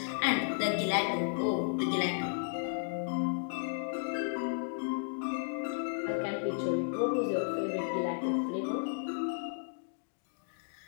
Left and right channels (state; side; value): silent; right; digital silence